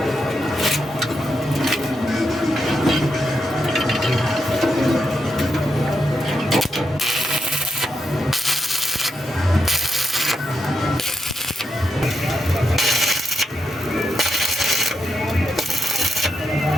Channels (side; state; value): both; normal; correlation 0.83